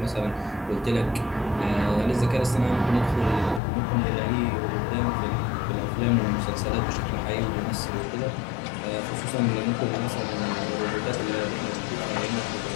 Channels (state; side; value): drops out; right; at 3.6 s